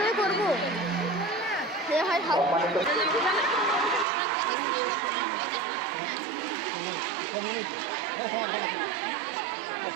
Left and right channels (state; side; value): drops out; left; at 4.0 s